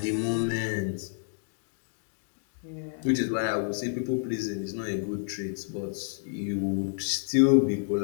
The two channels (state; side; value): silent; right; digital silence